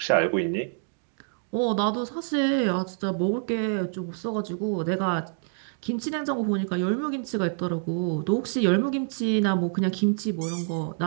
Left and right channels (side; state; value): left; silent; digital silence